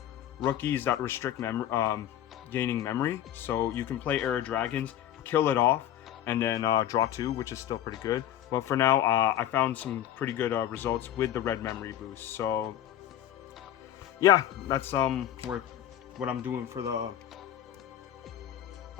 rookies that restrict gaining memory. So you can play Heir of Dragons, kill it off, and then draw 2, which is still pretty good. But for now, I found some pretty good results with the red memory boost. So yeah, that's what I'm doing for the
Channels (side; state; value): right; quieter; 11.5 dB